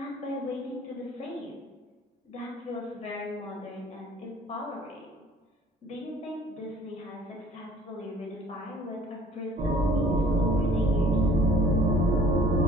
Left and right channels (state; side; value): normal; both; correlation 0.53